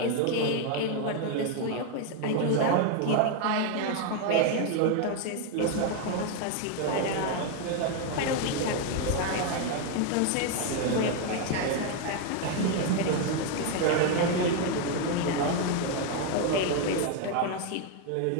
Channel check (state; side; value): different; both; correlation 0.01